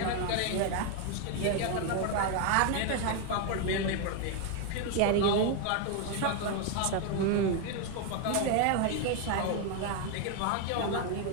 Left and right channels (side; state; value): both; different; correlation 0.01